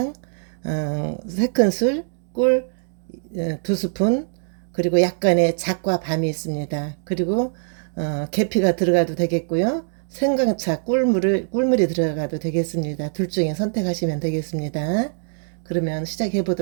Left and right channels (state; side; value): silent; left; 64 dB below the other